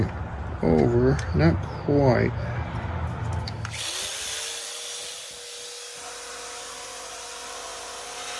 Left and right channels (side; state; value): both; identical; correlation 1.00